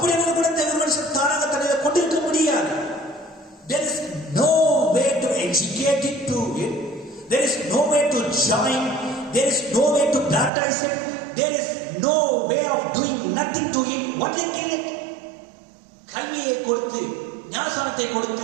ஒரு குணத்தை ஒரு மனுஷன் தானாக தன்னில் கொண்டிருக்க முடியாது. There is no way to educate it to it. There is no way to join. There is no way to baptize it. There is no way of doing nothing to it. What they kill it? கல்வியை கொடுத்து, ஞானசானத்தை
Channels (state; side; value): drops out; left; at 10.5 s